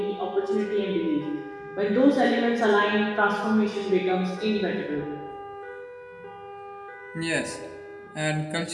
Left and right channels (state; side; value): identical; both; correlation 1.00